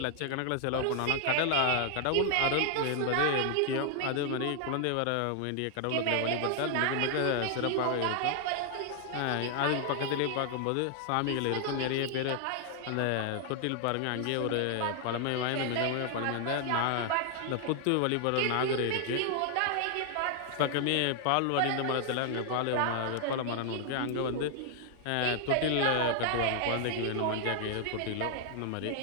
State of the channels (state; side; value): different; both; correlation 0.00